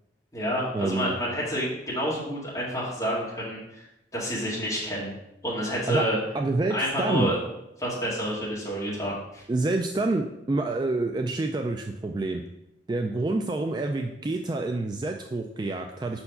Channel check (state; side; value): normal; both; correlation 0.56